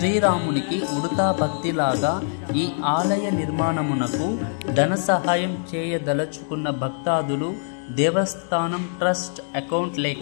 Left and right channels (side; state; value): right; silent; digital silence